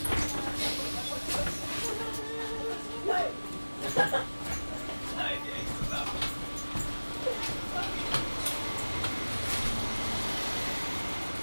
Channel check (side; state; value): both; inverted; correlation -1.00